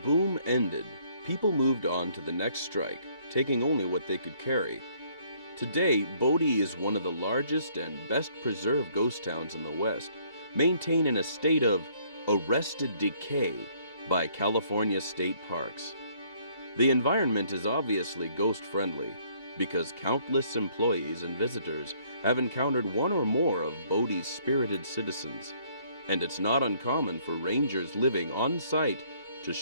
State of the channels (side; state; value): both; inverted; correlation -0.64